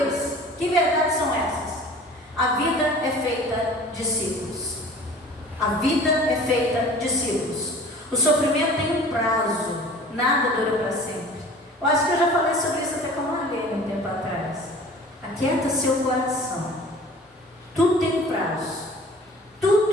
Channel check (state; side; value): normal; both; correlation 0.45